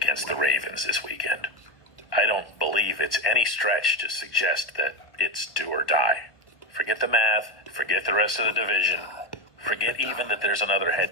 the Ravens this weekend. I don't believe it's any stretch to suggest that it's do or die. Forget the math, forget the rest of the division, forget even that there's another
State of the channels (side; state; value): right; late; 1.2 ms